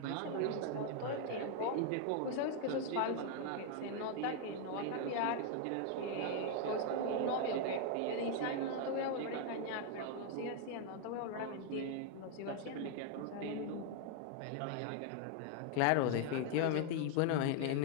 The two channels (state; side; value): different; both; correlation 0.00